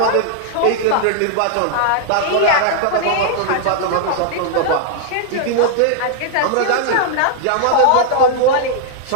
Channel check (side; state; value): both; different; correlation 0.00